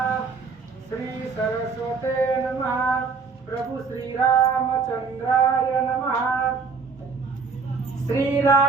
श्री सरस्वते नमः। प्रभु श्री रामचंद्राय नमः।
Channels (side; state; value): left; quieter; 4.9 dB